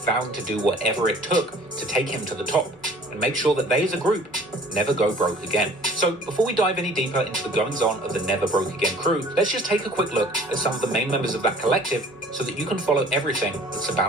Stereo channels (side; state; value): both; normal; correlation 0.50